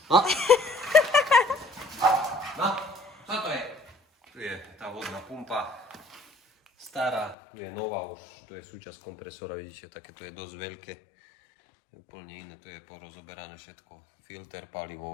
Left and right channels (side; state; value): right; drops out; at 7.4 s